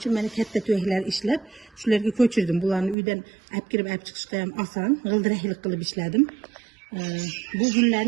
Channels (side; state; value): left; drops out; at 3.0 s